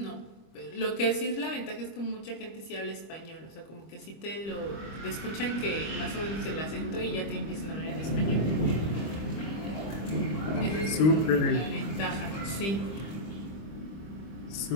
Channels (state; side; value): late; right; 25 ms